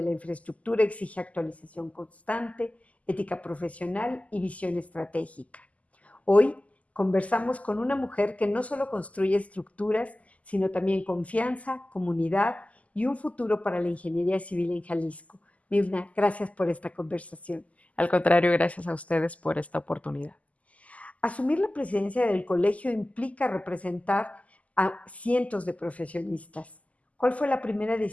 la infraestructura exige actualización constante, ética profesional y visión estratégica. Hoy conversamos con una mujer que no solo construye estructuras, sino también confianza, comunidad y un futuro para la ingeniería civil en Jalisco. Mirna, gracias por esta conversación. Al contrario, gracias a ustedes por esta oportunidad. Asumir la presidencia del colegio implica representar a cientos de profesionistas. ¿Cuál fue la primera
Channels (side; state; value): right; late; 0.071 ms